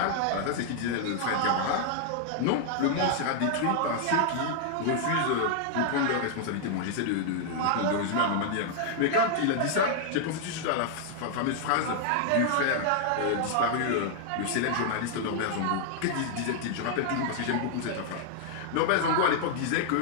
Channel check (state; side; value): different; both; correlation -0.01